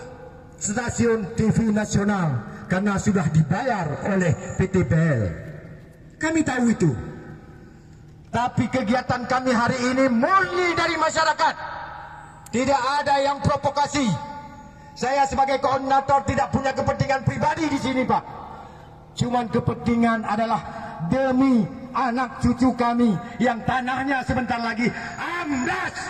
stasiun TV nasional karena sudah dibayar oleh PT BEL. Kami tahu itu. Tapi kegiatan kami hari ini murni dari masyarakat. Tidak ada yang provokasi. Saya sebagai koordinator tidak punya kepentingan pribadi di sini Pak. Cuman kepentingan adalah demi anak cucu kami yang tanahnya sebentar lagi amblas.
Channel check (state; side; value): identical; both; correlation 1.00